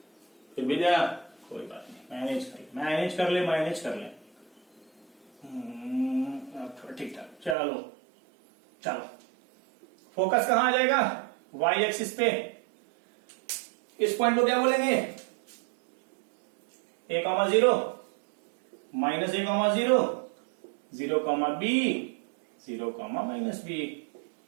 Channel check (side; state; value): left; drops out; at 7.6 s